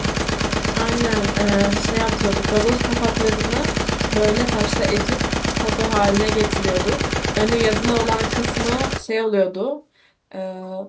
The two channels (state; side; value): identical; both; correlation 1.00